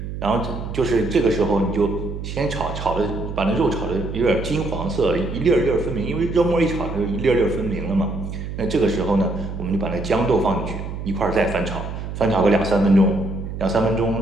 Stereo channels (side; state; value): right; noise; hum, 7 dB below the sound